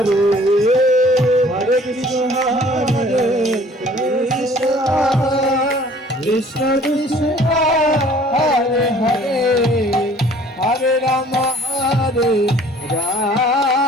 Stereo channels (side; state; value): both; normal; correlation 0.53